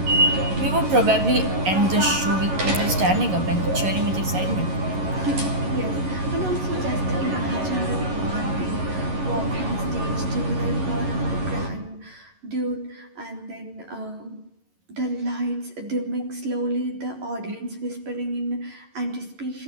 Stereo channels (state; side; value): late; left; 11 ms